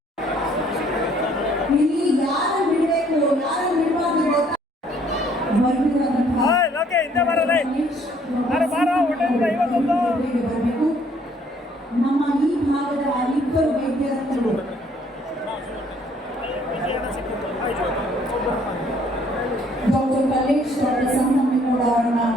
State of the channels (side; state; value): both; normal; correlation 0.63